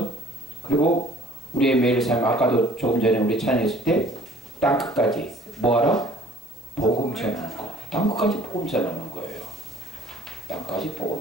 그리고 우리의 매일 삶, 아까도 조금 전에 우리 찬양했을 때 땅끝까지 뭐하라? 복음 전하는 거. 땅끝까지 복음 전하는 거예요. 땅까지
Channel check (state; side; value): noise; right; hiss, 29 dB below the sound